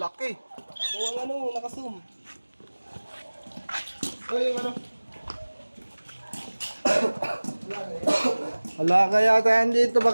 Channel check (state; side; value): inverted; both; correlation -1.00